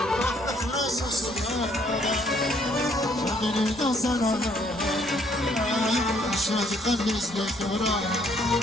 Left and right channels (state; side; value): noise; left; rumble, 25 dB below the sound